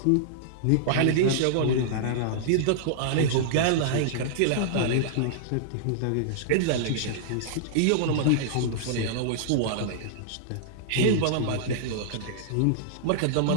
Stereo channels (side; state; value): both; different; correlation -0.02